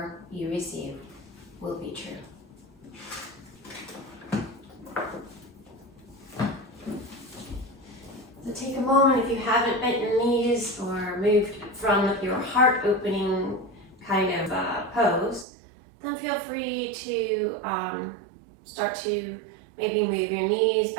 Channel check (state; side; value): drops out; left; at 15.5 s